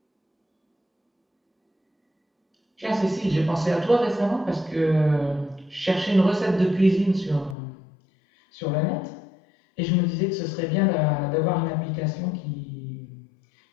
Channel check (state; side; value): drops out; right; at 7.6 s